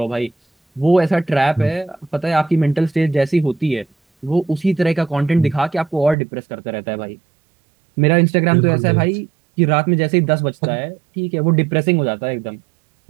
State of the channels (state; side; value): drops out; left; at 6.2 s